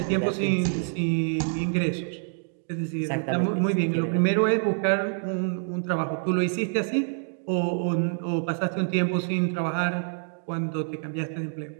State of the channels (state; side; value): silent; left; digital silence